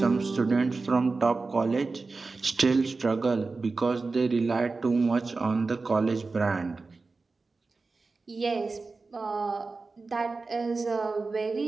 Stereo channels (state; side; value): quieter; left; 3.9 dB